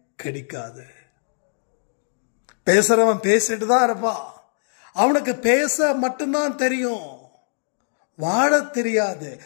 கடிக்காது. பேசுறவன் பேசிட்டு தான் இருப்பான், அவனுக்கு பேச மட்டும்தான் தெரியும், வாழ தெரியாது.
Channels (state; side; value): silent; right; digital silence